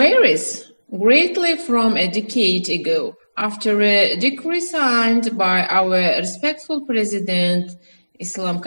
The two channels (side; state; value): both; inverted; correlation -1.00